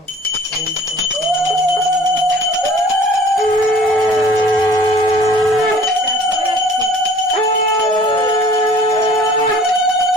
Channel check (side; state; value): both; normal; correlation 0.50